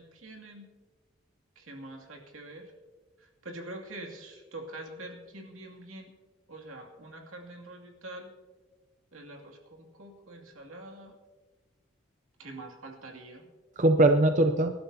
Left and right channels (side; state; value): both; normal; correlation 0.38